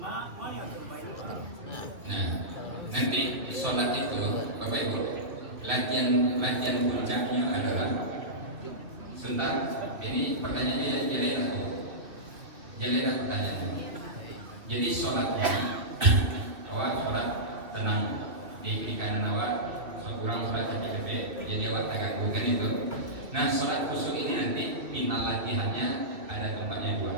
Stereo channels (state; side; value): late; left; 2.5 ms